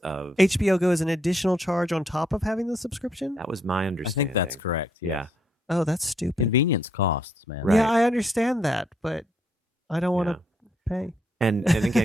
of. HBO Go is an additional charge on top of having the subscription? That was my I understanding. think that's correct. Yeah. yes. Oh, that's stupid. Convenience costs, man. Right. Yeah, I understand that, but I don't want to pay. And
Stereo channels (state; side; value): normal; both; correlation 0.74